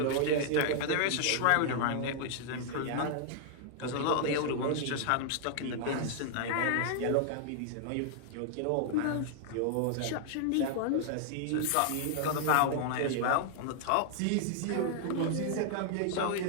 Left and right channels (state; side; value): different; both; correlation -0.01